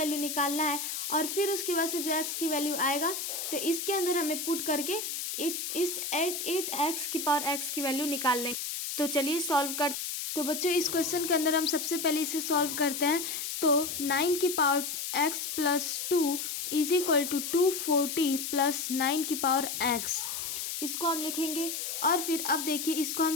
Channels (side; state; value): left; noise; hiss, 4 dB below the sound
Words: निकालना है, और फिर उसके बाद से जो x की वैल्यू आएगा तो इसके अंदर हमें पुट करके इस 8x की पावर x की वैल्यू निकाल लें। तो चलिए सॉल्व कर। तो बच्चों इस क्वेश्चन के अंदर हम सबसे पहले इसे सॉल्व करते हैं। तो 9 की power x plus 2 is equal to 240 plus 9 की पावर x, इसको हम लिखेंगे। और फिर अब देखिए इसको